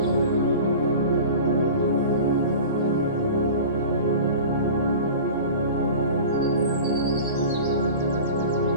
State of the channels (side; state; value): both; inverted; correlation -0.37